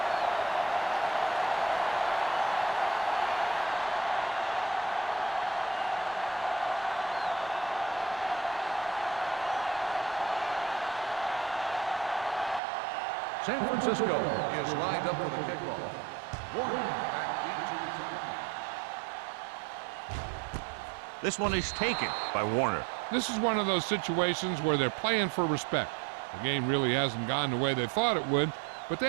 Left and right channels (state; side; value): drops out; left; at 12.6 s